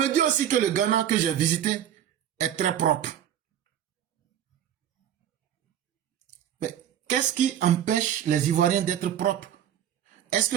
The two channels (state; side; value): quieter; left; 10.3 dB